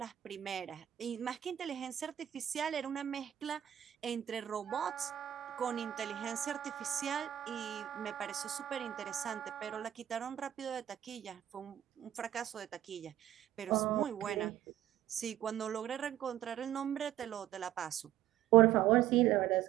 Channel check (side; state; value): left; quieter; 12.1 dB